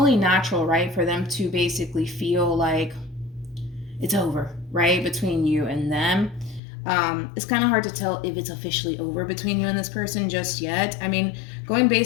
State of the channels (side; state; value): right; drops out; at 6.6 s